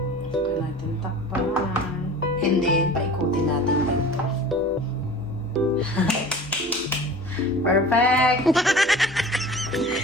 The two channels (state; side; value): normal; both; correlation 0.40